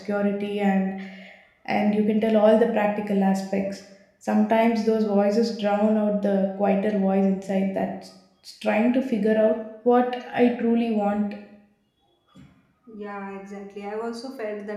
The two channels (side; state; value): both; identical; correlation 1.00